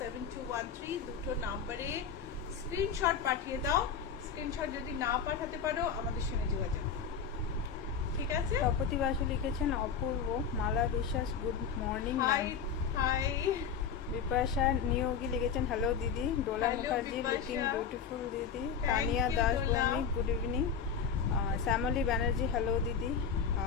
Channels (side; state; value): right; quieter; 6.7 dB